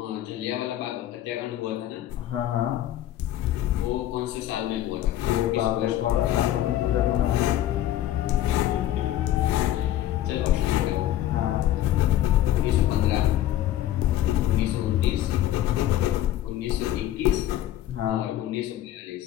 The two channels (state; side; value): quieter; right; 13.0 dB